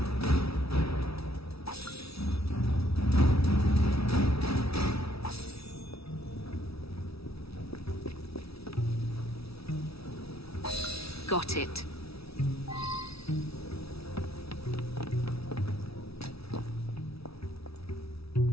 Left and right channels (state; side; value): late; right; 0.76 ms